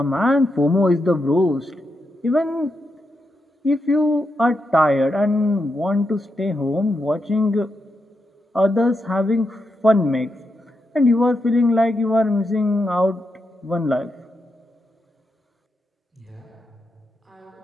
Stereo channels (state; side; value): normal; both; correlation 0.85